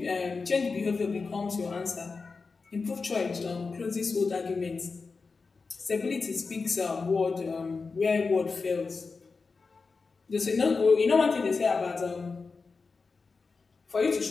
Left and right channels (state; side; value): quieter; right; 4.5 dB